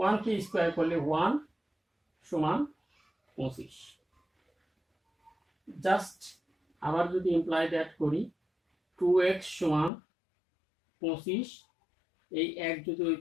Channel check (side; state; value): right; drops out; at 9.9 s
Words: K square করলে 1 সমান 25। জাস্ট আবার যদি ইমপ্লাই দ্যাট করি, 2x সমান 25, এই এক যদি ওই